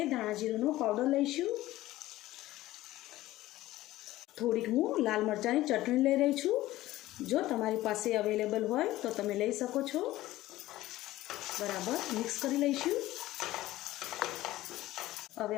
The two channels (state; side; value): quieter; right; 16.2 dB